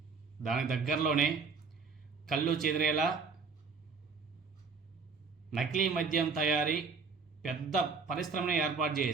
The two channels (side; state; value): left; quieter; 5.0 dB